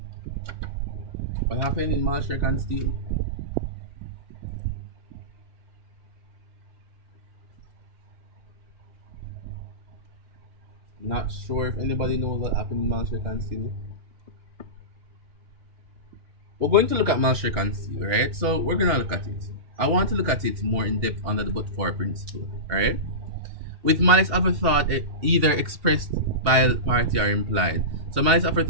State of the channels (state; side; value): late; left; 2.7 ms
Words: What happened in Malshrek and Steele? Not sure if anybody knows what happened in Malshrek and Steele. We're going to look at Malshrek and Steele, right? So we're gonna look at it. I want to look at it more in depth under the but for principle, alright? With malice aforethought, either expressed by a party or implied. So malice